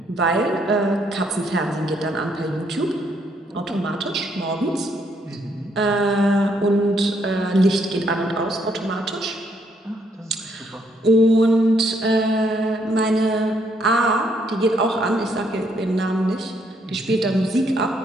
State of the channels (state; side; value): normal; both; correlation 0.71